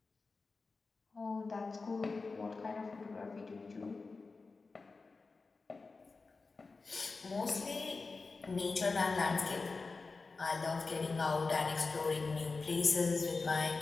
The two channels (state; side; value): quieter; right; 4.1 dB